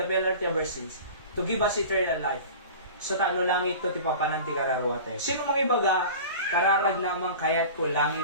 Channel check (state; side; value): inverted; both; correlation -0.37